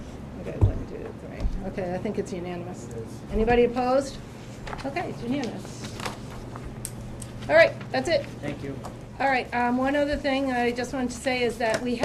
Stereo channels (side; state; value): both; identical; correlation 1.00